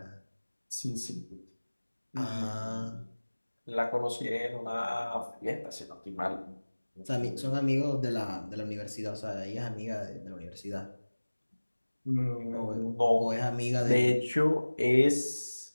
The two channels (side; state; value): both; inverted; correlation -1.00